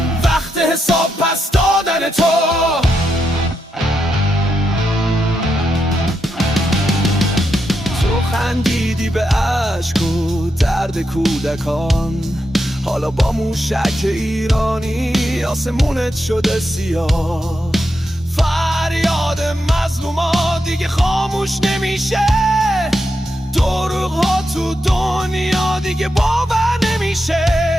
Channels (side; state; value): both; normal; correlation 0.84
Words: وقت حساب پس دادن تو. خندیدی به عشق و درد کودکان، حالا با موشک ایرانی آسمونت شده سیاه. فریاد مظلوما دیگه خاموش نمیشه، دروغ ها تو دنیا دیگه باور نمیشه.